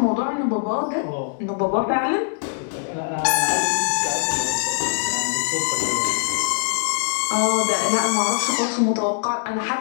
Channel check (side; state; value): right; silent; 64 dB below the other